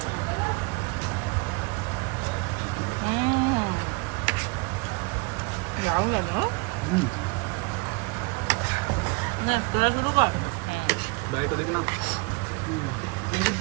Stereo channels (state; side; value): quieter; left; 28.5 dB